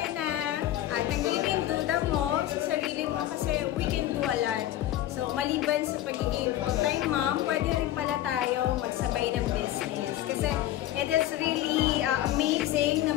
na tanggalin duda mo sa sarili mo kasi we can do a lot. So, maliban sa pagiging full-time mom, pwede rin pala tayo magsabay ng business. Kasi it is really amazing na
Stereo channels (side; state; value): right; quieter; 13.5 dB